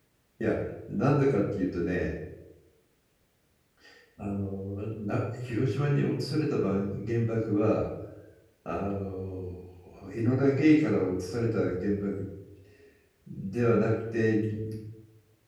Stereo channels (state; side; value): identical; both; correlation 1.00